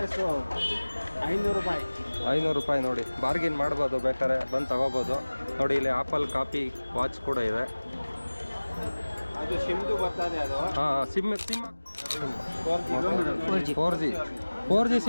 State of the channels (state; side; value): inverted; both; correlation -1.00